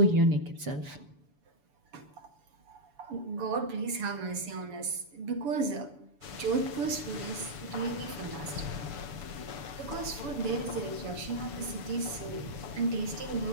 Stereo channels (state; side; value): late; left; 6.9 ms